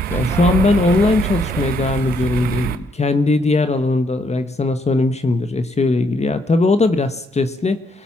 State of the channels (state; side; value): normal; both; correlation 0.72